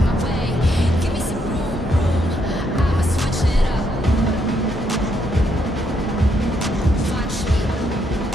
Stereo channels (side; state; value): both; normal; correlation 0.75